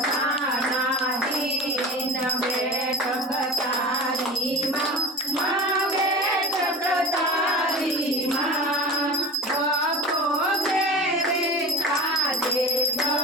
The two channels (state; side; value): normal; both; correlation 0.35